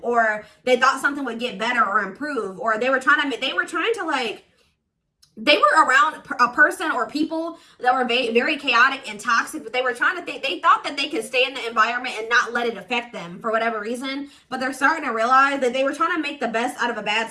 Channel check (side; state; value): both; identical; correlation 1.00